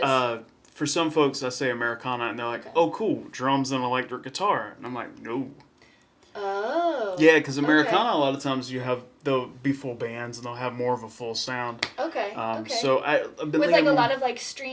for some folks, I say Americana and they're like, oh, cool, drums and electric guitar. And I'm like, no. Oh. Yeah, because Americana, a lot of times they'll be full bands and they'll have more of a full sound. Okay. So I've been with like a lot of like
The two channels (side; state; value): both; identical; correlation 1.00